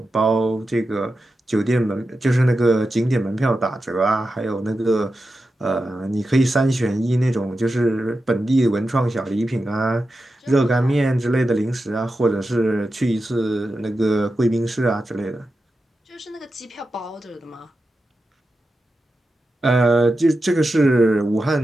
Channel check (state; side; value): normal; both; correlation 0.91